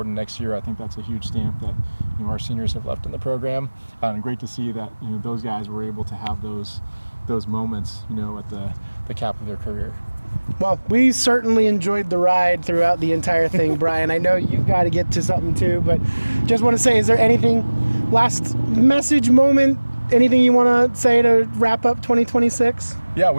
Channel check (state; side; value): inverted; both; correlation -1.00